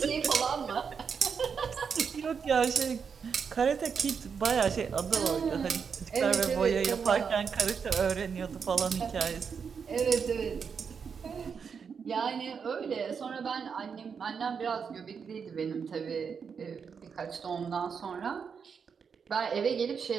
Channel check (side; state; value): left; quieter; 6.3 dB